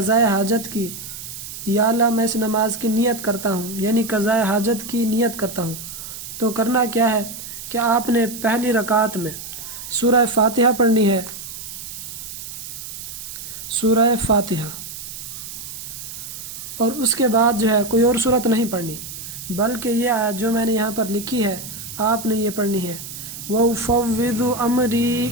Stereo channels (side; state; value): right; noise; hiss, 10 dB below the sound